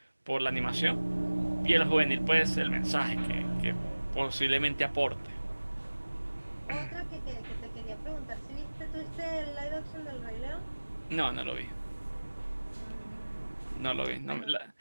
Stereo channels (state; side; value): inverted; both; correlation -1.00